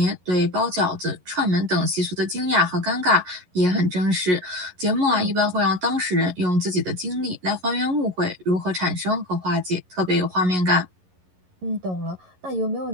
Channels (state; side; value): late; left; 11 ms